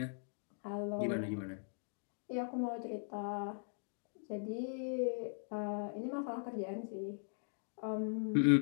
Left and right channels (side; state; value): right; silent; digital silence